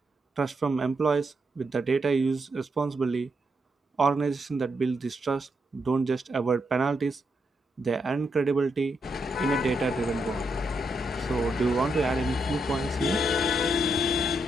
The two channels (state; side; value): normal; both; correlation 0.81